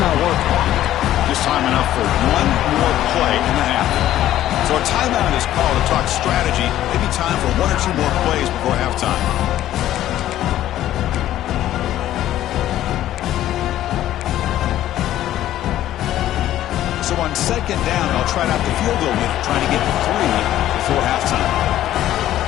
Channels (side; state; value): right; quieter; 13.0 dB